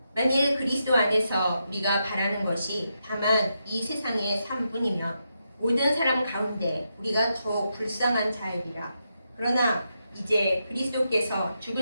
만일 그리스도 안에서 우리가 바라는 것이 다만 이 세상의 삶뿐이면 모든 사람 가운데 우리가 더욱 불쌍한 자이리라. 그러나 이제 그리스도께서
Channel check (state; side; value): inverted; both; correlation -0.84